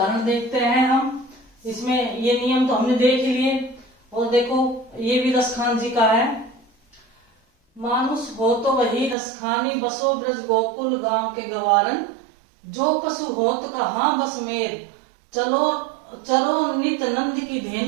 देखते हैं हम। इसमें ये नियम तो हमने देख लिए। और देखो ये भी रसखान जी का है। मानुष हो तो वही रसखानी, बसो ब्रज गोकुल गांव के गवारन। जो पशु होत कहाँ बस मेर, चलो चरो नित नंद की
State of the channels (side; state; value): left; drops out; at 9.2 s